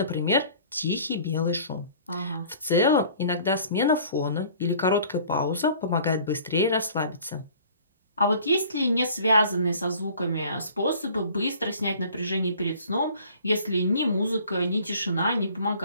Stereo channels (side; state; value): both; inverted; correlation -0.50